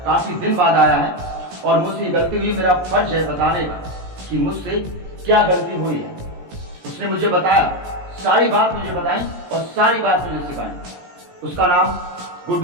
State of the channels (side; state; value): left; late; 17 ms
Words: आया है, और मुझसे ये गलती हुई, मेरा फर्ज है बताने का कि मुझसे क्या गलती हुई है। उसने मुझे बताया, सारी बात मुझे बताई और सारी बात मुझे सिखाई। उसका नाम